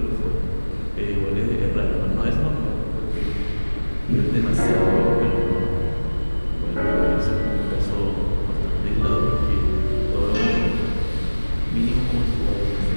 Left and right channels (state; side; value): inverted; both; correlation -1.00